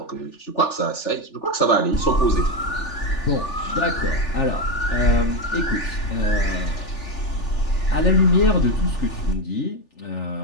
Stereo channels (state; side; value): late; right; 3.4 ms